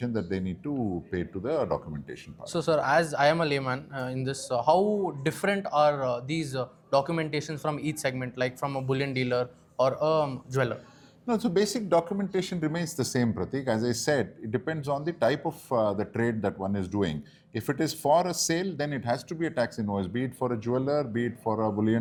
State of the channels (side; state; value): both; identical; correlation 1.00